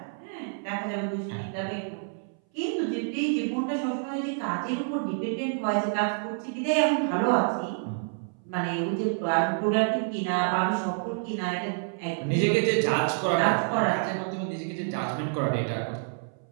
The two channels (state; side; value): silent; left; 59 dB below the other